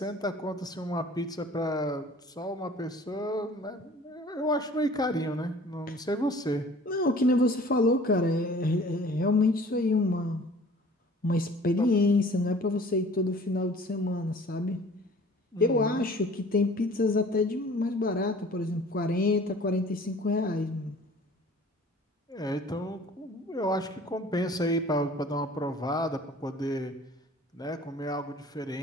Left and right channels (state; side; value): normal; both; correlation 0.49